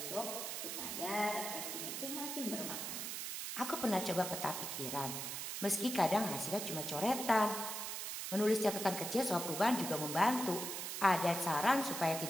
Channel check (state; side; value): noise; right; hiss, 4 dB below the sound